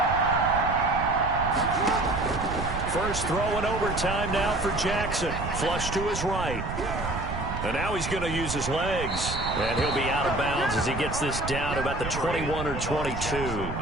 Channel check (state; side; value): noise; right; rumble, 6 dB below the sound